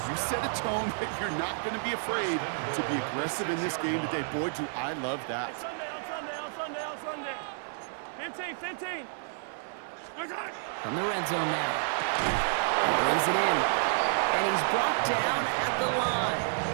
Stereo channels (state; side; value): silent; left; digital silence